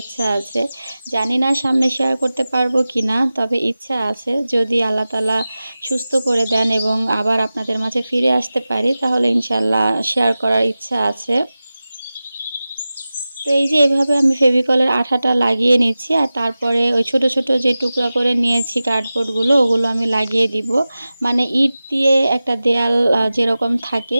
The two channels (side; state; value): both; inverted; correlation -0.95